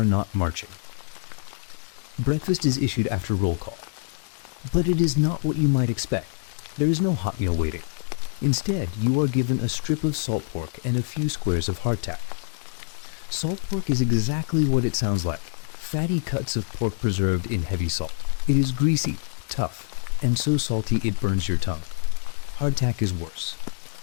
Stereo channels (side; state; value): right; silent; 61 dB below the other